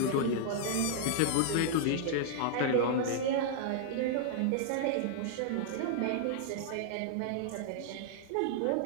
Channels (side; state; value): both; different; correlation -0.01